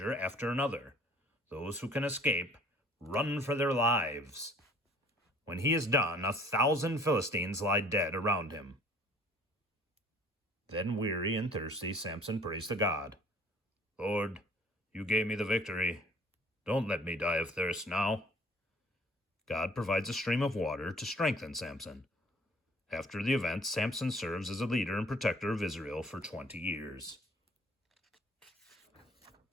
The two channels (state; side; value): normal; both; correlation 0.53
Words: after another. Those who can escape run for their lives. When he is done, 1,000 Philistines lie dead around him." Then, weary and thirsty, Samson prays to God. "Lord, you gave me the victory. Don't let me die of thirst now." God provides a stream of water to strengthen Samson. After the event, Samson serves as a leader and protector of Israel for 20 years.